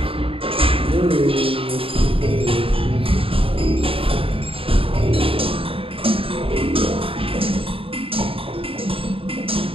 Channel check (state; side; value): late; left; 0.27 ms